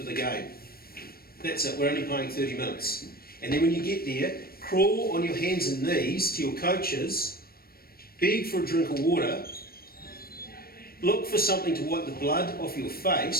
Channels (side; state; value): right; late; 0.44 ms